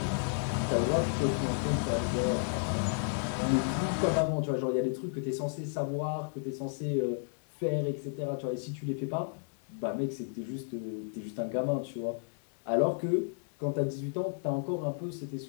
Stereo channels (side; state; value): right; silent; digital silence